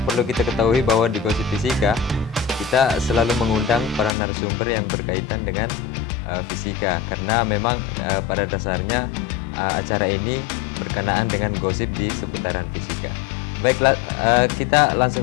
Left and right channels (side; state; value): right; drops out; at 4.2 s